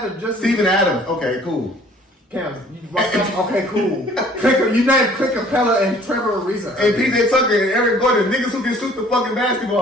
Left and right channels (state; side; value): normal; both; correlation 0.55